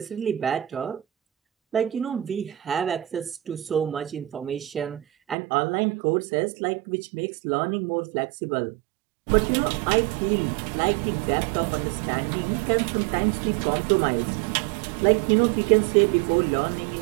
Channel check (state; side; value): drops out; left; at 5.4 s